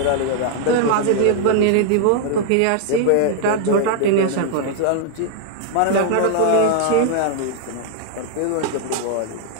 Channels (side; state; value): both; different; correlation 0.00